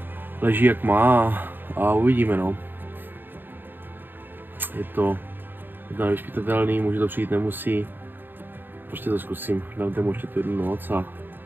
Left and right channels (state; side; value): late; left; 0.094 ms